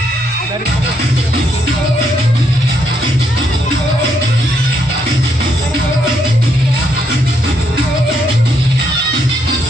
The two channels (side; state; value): both; normal; correlation 0.75